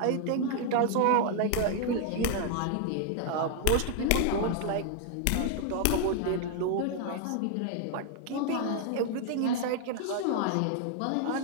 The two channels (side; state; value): both; different; correlation 0.00